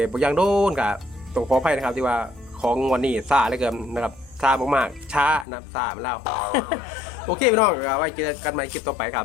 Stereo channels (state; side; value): drops out; right; at 5.5 s